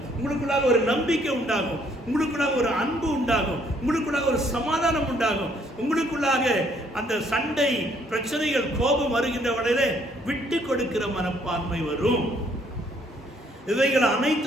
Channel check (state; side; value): normal; both; correlation 0.66